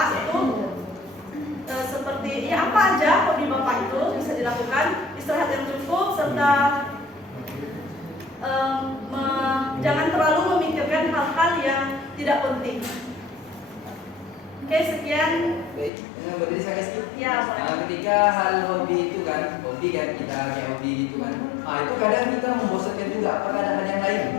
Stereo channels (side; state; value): right; drops out; at 15.9 s